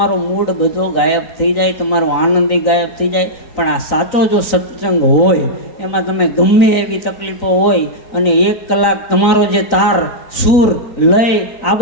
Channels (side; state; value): right; late; 3.9 ms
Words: મૂડ બધો ગાયબ થઈ જાય, તમારો આનંદ ગાયબ થઈ જાય. પણ આ સાચો જો સત્સંગ હોય એમાં તમે ગમે એવી તકલીફો હોય અને 1 કલાક તમારો જે તાર સૂર લય આ